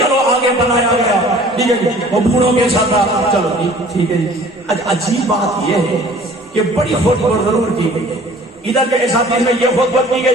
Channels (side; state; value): both; normal; correlation 0.50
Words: آگے بنایا گیا، ٹھیک ہے جی، وہ بوڑھوں کے سردار، چلو جی ٹھیک ہے جی۔ عجیب بات یہ ہے کہ بڑی خطبہ ضرور کی گئی ہے، ادھر کے اساتذہ میں یہ خطبہ کی